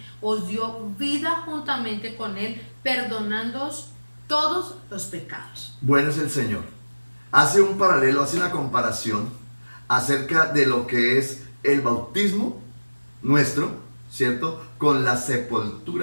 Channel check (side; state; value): both; inverted; correlation -1.00